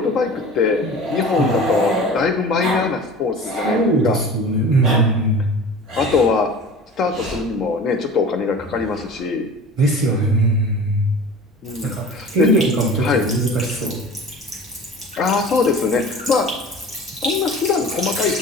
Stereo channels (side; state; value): both; normal; correlation 0.39